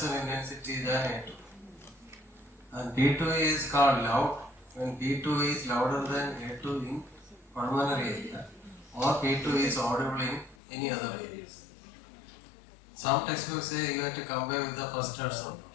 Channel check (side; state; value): right; drops out; at 10.6 s